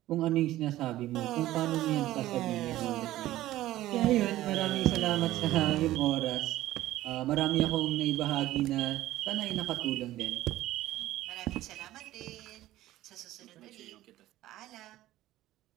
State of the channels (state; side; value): quieter; left; 15.2 dB